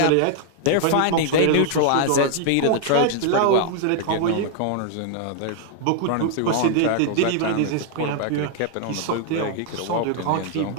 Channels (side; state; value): both; different; correlation 0.00